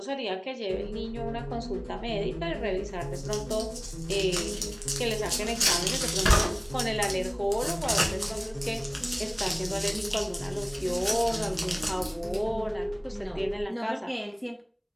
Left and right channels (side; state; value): both; identical; correlation 1.00